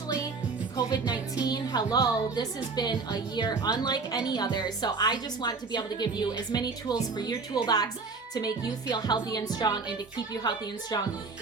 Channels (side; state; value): left; quieter; 4.4 dB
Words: COVID-19. Hello, this has been a year unlike any other. So I just want to be able to give you as many tools for your toolbox to make you feel healthy and strong and to keep you healthy and strong